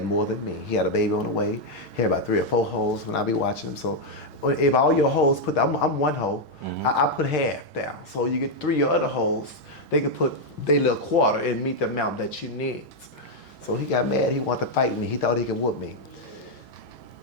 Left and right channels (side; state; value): both; normal; correlation 0.01